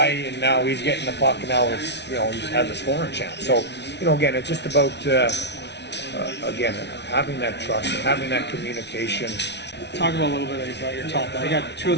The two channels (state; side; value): late; right; 0.50 ms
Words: and now he's getting the puck, and now it's, he has a scoring chance. So, again, it's just about, having that trust, having that communication. Talk about a little bit about your top. You got two of